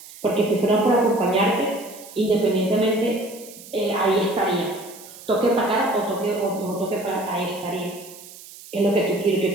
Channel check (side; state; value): right; noise; hiss, 18 dB below the sound